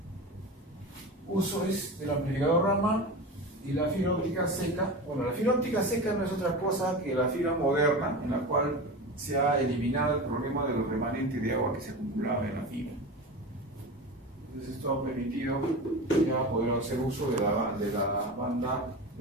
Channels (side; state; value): both; normal; correlation 0.27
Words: Uso es del amplificador Raman y la fibra óptica seca. Bueno, la fibra óptica seca no es otra cosa que la fibra moderna, en la cual se ha eliminado el problema de los remanentes de agua que se acumulaba en la fibra. Entonces esto ha permitido ya poder hacer uso de la banda